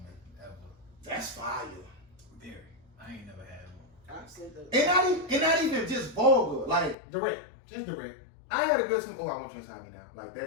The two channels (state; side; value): drops out; right; at 7.0 s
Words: ever. That's fire. Very. I ain't never had one. I've seen the. And not even just vulgar. Like Direct. Just direct. I had a good some. Oh, I want you inside me now. Like